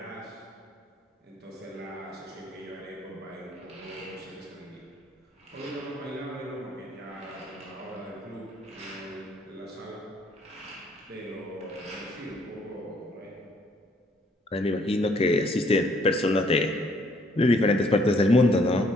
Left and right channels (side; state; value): both; normal; correlation 0.65